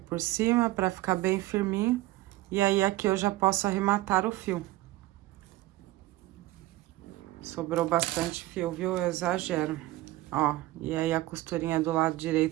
cima pra ficar bem firminho. E aí, aqui eu já posso arrematar o fio. Sobrou bastante fio, viu? Eu exagero. Ó, e aí a costurinha do lado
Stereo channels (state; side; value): quieter; left; 17.2 dB